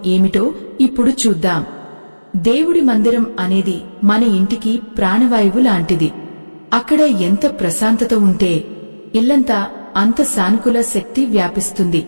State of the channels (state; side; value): inverted; both; correlation -1.00